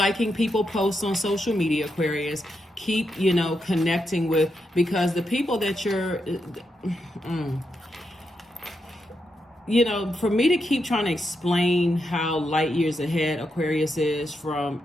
people posts on social media, Aquarius. Keep, connecting with, because the people that you're, for me to keep trying to explain how light years ahead Aquarius is from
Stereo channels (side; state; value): both; normal; correlation 0.84